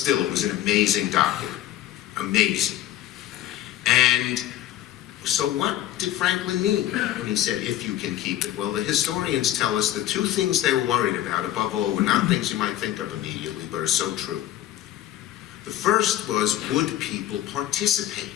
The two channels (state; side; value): quieter; right; 13.1 dB